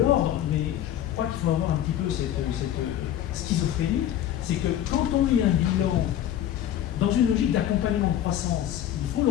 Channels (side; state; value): right; quieter; 11.3 dB